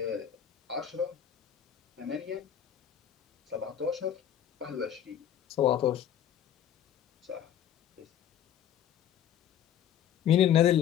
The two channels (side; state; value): right; quieter; 10.0 dB